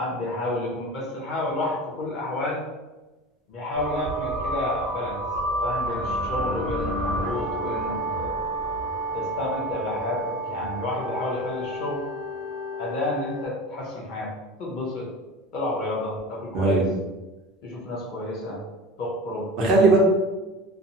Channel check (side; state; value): both; normal; correlation 0.33